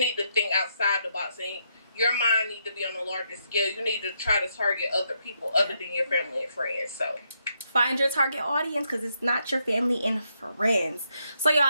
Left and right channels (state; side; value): inverted; both; correlation -0.77